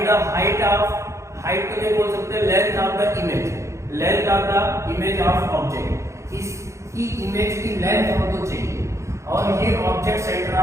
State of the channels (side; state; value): left; late; 0.14 ms